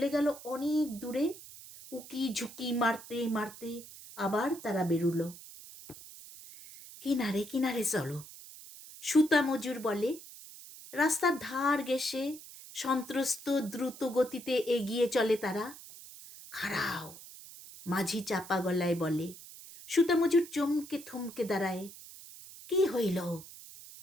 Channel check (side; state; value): right; noise; hiss, 16 dB below the sound